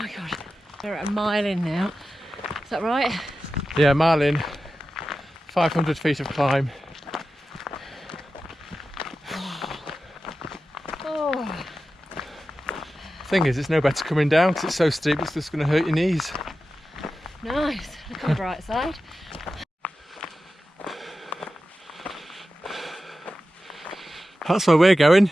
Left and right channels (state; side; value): normal; both; correlation 0.93